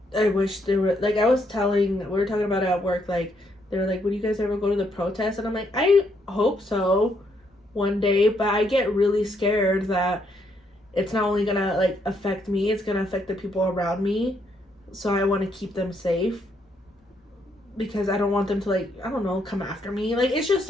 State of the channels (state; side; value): normal; both; correlation 0.74